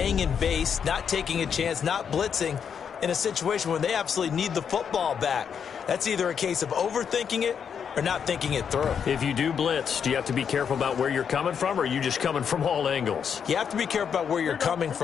in base, not taking a chance, not blitzing, in a situation where they absolutely need the football back. That's either a case of overthinking it or not thinking it through. If you do blitz, do you have to be careful about where you're coming from, or are you just coming from all angles? You have to be careful about where you're coming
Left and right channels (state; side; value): quieter; right; 7.3 dB